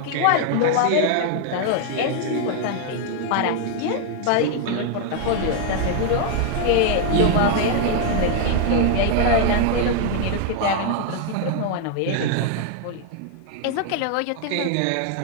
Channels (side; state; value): both; different; correlation 0.00